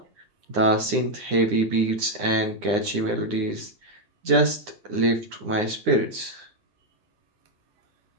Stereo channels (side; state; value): left; late; 9.8 ms